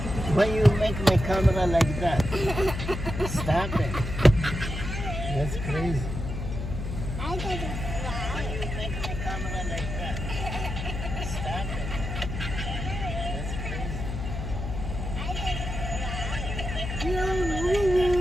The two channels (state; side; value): noise; left; hum, 5 dB below the sound